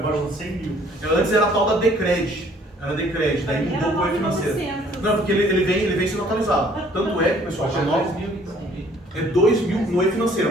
de 100 mil. Antes era a tal da Decred. Era Decred, daí Pra mim mudou era para o financeiro. 9.900. Não, porque ele vem sendo atualizado. Tanto é que, pessoal, Acho que é 2.000 então. é 2.000 no E-financeiro,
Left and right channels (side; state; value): both; normal; correlation 0.58